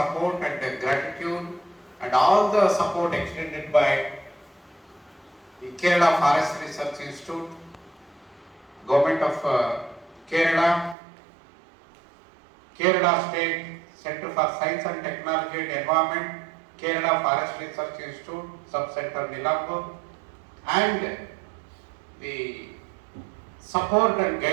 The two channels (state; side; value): drops out; left; at 11.0 s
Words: and gratitude and all the support extended by the Kerala Forest Research Institute, Government of Kerala, Kerala State Center for Science and Technology and Environment, Kerala Forest Research Institute, Sub-Center Nilambur, and the support and